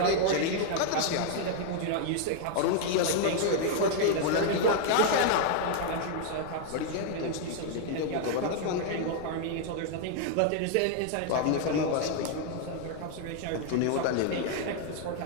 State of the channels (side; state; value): both; different; correlation 0.00